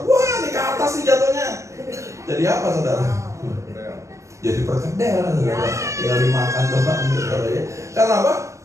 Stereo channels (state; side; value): late; left; 0.15 ms